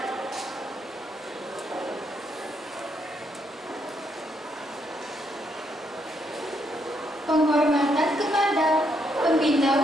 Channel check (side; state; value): both; normal; correlation 0.75